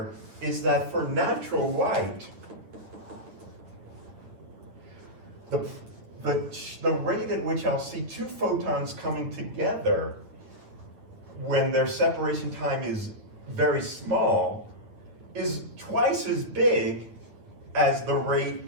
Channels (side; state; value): left; late; 9.5 ms